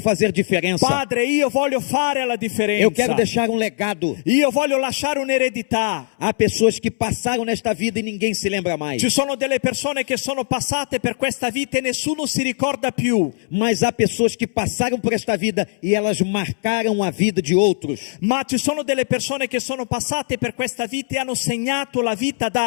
diferença. Padre, io voglio fare la differenza. Eu quero deixar um legado. Io voglio lasciare un'eredità. Há pessoas que passaram nesta vida e ninguém se lembra mais. Ci sono delle persone che sono passate per questa vita e nessuno si ricorda più. Mas há pessoas que passaram por esta vida e elas marcaram a vida de outros. Ma ci sono delle persone che sono passate per questa vita e hanno segnato la vita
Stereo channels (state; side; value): silent; right; 64 dB below the other